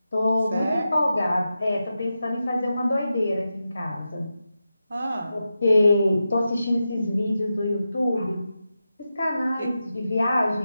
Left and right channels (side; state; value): both; inverted; correlation -0.90